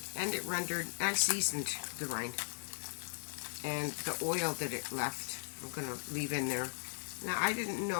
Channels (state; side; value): silent; right; 53 dB below the other